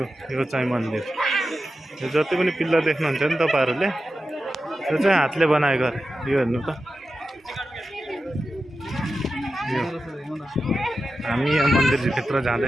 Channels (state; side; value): normal; both; correlation 0.91